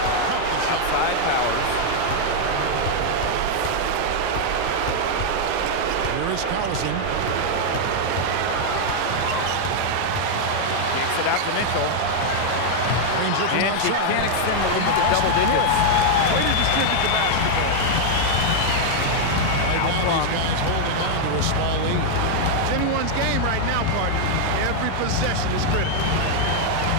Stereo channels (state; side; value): different; both; correlation 0.00